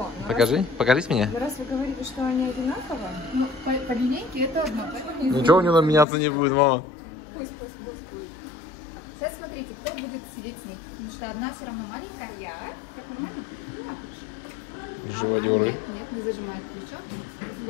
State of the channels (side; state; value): right; drops out; at 6.1 s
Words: Но Покажи, покажись мне. раз вы говорите, что они одинаковые, ну, по линейке это одно. Ничего у него меняться не будет, мама. Пусть будет. Сейчас смотрите, кто будет сидеть с ней. Потому что одна все равно маленькая, я. Так нормально? Живодеры. Нет, не зажимает плечо.